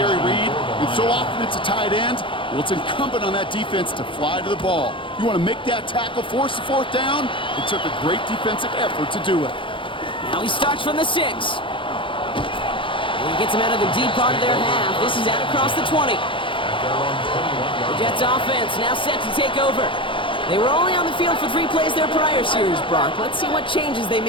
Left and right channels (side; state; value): right; late; 0.25 ms